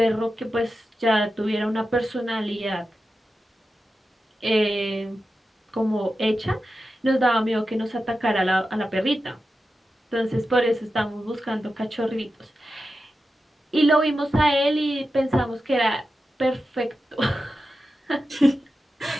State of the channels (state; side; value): normal; both; correlation 0.91